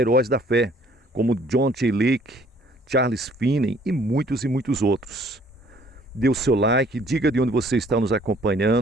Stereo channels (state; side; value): normal; both; correlation 0.59